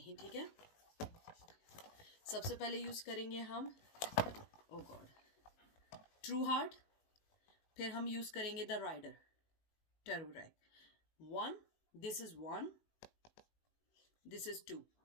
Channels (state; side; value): late; right; 18 ms